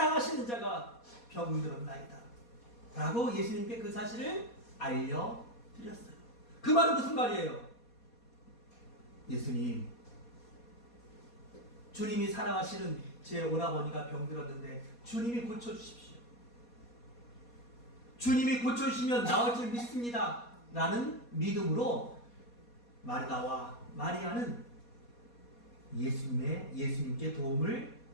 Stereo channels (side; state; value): right; late; 4.2 ms